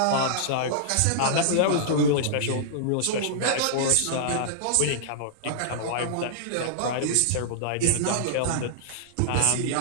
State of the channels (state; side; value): different; both; correlation -0.01